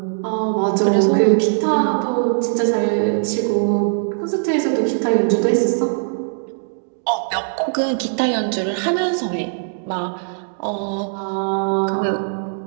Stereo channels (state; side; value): silent; left; digital silence